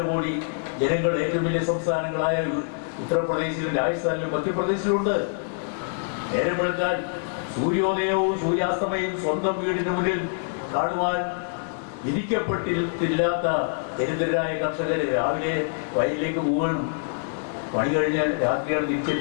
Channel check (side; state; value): right; silent; 62 dB below the other